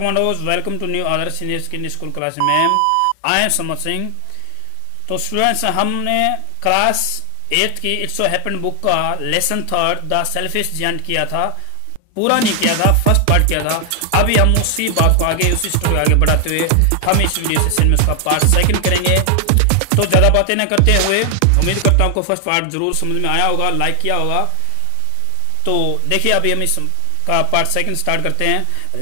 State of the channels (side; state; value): both; different; correlation 0.00